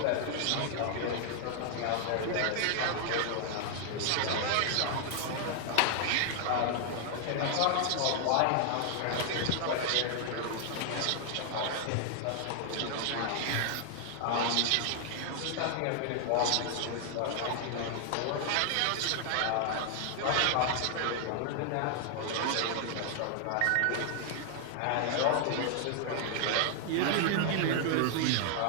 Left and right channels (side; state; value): both; different; correlation 0.00